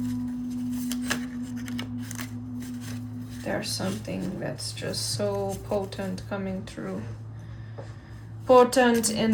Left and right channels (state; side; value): identical; both; correlation 1.00